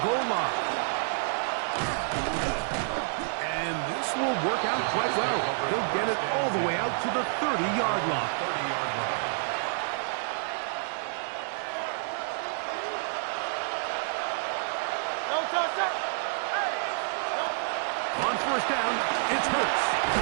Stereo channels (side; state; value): left; silent; digital silence